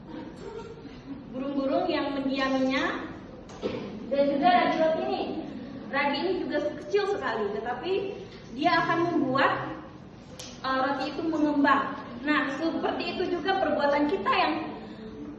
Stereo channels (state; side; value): identical; both; correlation 1.00